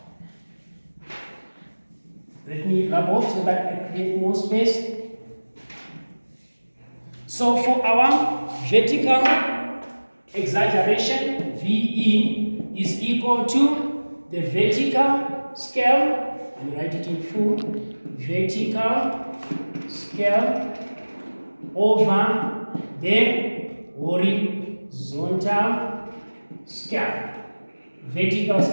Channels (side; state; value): both; inverted; correlation -1.00